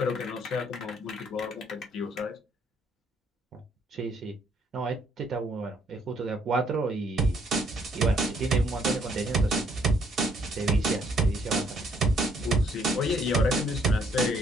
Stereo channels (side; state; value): both; normal; correlation 0.67